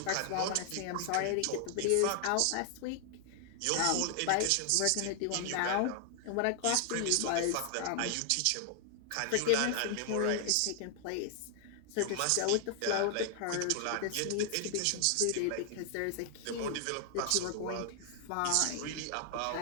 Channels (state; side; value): different; both; correlation 0.00